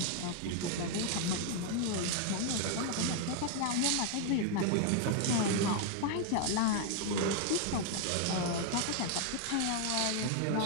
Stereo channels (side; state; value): both; different; correlation 0.00